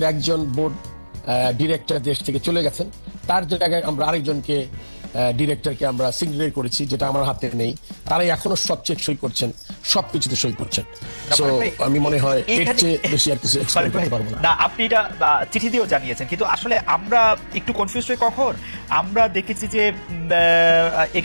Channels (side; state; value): both; inverted; correlation -1.00